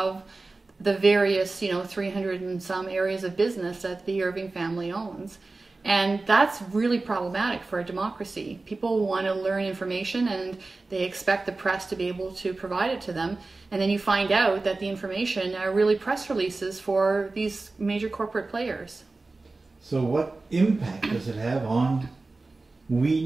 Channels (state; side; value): quieter; left; 3.5 dB